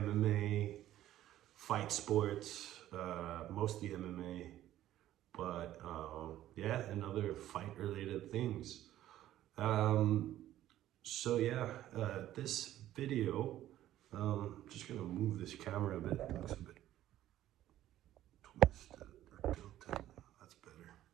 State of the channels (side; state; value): left; quieter; 13.3 dB